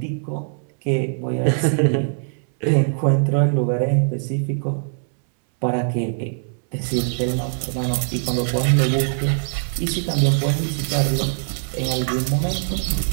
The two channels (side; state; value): left; silent; 64 dB below the other